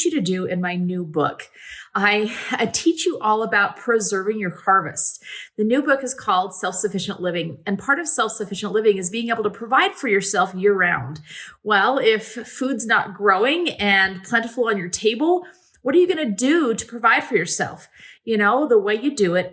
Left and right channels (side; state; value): both; identical; correlation 1.00